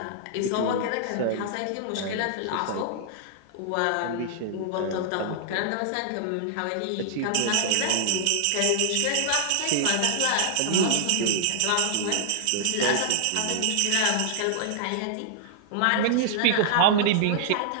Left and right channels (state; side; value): different; both; correlation 0.00